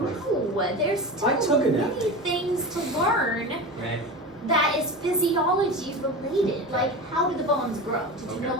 there's still I took it out. many things to learn Okay. that is physiology related. Like, how do the bones grow? Did you Okay.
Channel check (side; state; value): both; normal; correlation 0.28